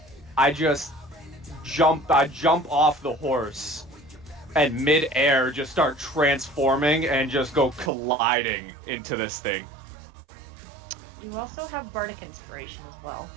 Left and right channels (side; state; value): left; drops out; at 7.9 s